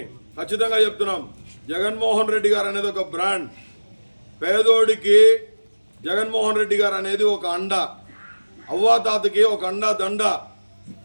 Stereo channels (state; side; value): inverted; both; correlation -1.00